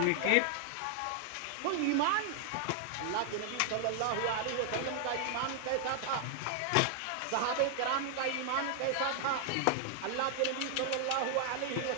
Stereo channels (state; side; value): different; both; correlation 0.00